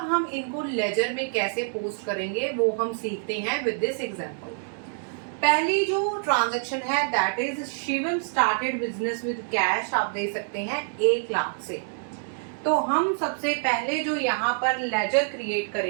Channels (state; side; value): silent; left; digital silence